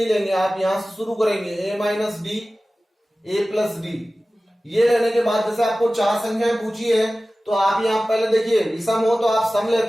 लेंगे, आप यहाँ से शुरू करेंगे a minus D, a plus D. ये लेने के बाद जैसे आपको 4 संख्याएं पूछी है तो आप यहाँ पहले देखिए विषम हो तो आप सम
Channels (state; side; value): normal; both; correlation 0.96